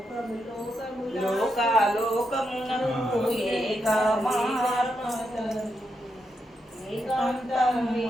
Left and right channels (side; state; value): both; normal; correlation 0.84